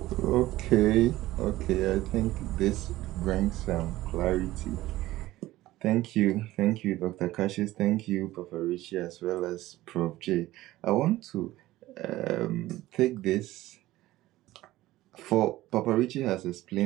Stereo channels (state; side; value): quieter; left; 16.6 dB